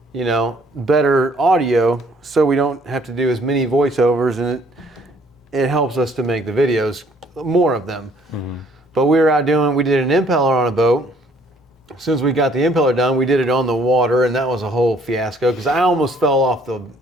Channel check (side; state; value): both; normal; correlation 0.62